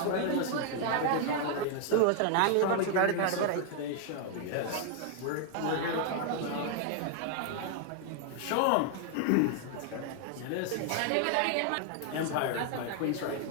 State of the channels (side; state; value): both; different; correlation 0.00